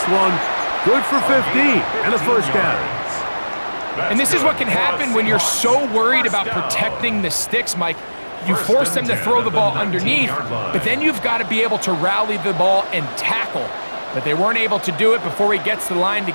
one good for 15 and a 1st down. And this is what can happen when you're so worried about protecting the sticks, Mike. You force them to throw the ball underneath, but then you've got to be able to rally the ball and tackle. But they weren't able to do it before he gets to the line to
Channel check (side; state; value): both; inverted; correlation -1.00